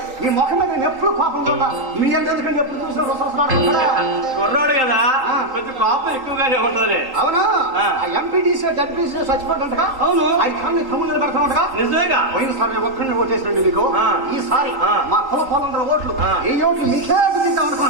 మీ ముఖం మీద నేను ఎప్పుడు కోపం చూడా. మీ ఎందుకంటే ఎప్పుడు చూసిన కుర్రాడు కదా, కొంచెం కోపం ఎక్కువగానే ఉంటది. అవును, ఆ ఎంపీటీసీ జడ్పీసీ చచ్చిపోతుంటగా. అవును, అది కానీ తమ్ముళ్ళు పెడతా ఉండగా. నిజమేగా. పోయినసారి నేను ఒక్కడిని ఓటేసినండి మీకు. ఈసారి మా కుల పొలందరూ ఓట్లు, ఈ ఓట్లు మీకే గుర్తిద్దాం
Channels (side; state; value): left; late; 3.8 ms